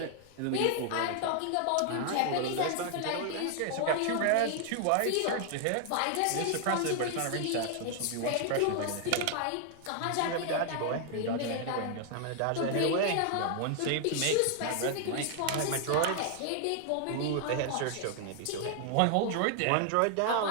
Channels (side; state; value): both; different; correlation 0.00